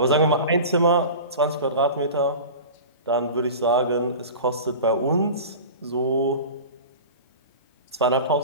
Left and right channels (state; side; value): inverted; both; correlation -0.35